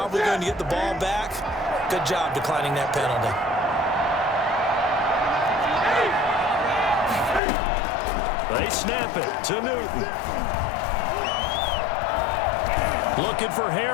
going to get the ball back. Good job declining that penalty. They snap it to Newton. Looking for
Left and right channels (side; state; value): right; drops out; at 7.4 s